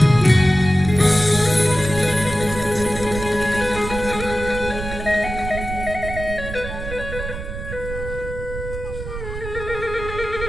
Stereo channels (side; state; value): right; noise; rumble, 8 dB below the sound